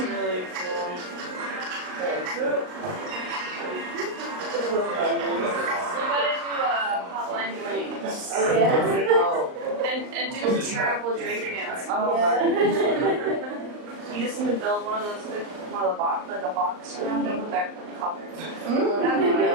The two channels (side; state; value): left; late; 38 ms